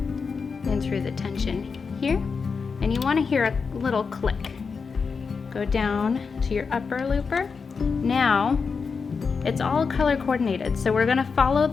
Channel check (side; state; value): right; quieter; 5.3 dB